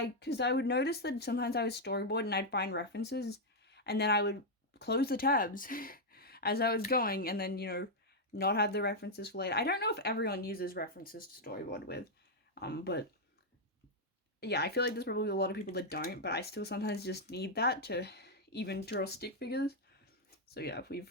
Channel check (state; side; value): normal; both; correlation -0.02